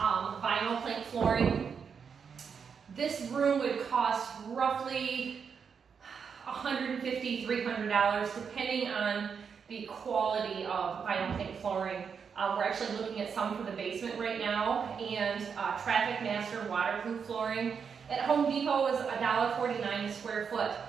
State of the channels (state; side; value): quieter; left; 6.4 dB